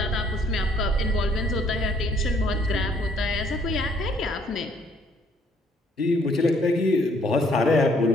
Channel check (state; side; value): normal; both; correlation 0.64